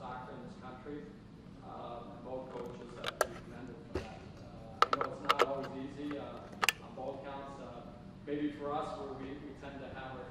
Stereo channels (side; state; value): both; identical; correlation 1.00